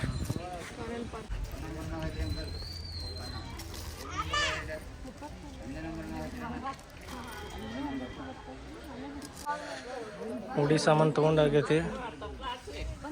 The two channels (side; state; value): both; identical; correlation 1.00